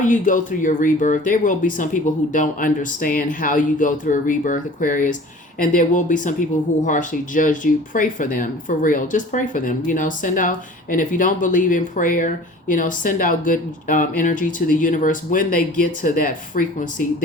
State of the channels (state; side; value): normal; both; correlation 0.45